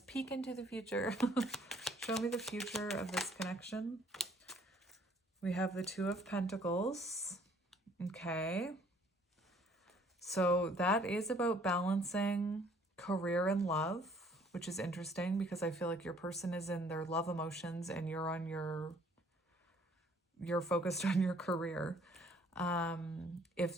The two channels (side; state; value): both; normal; correlation 0.60